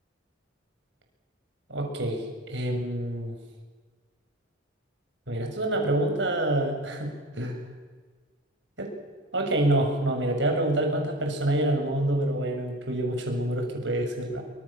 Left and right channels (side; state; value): both; normal; correlation 0.34